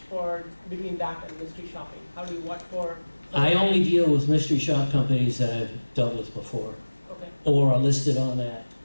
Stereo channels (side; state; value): both; inverted; correlation -1.00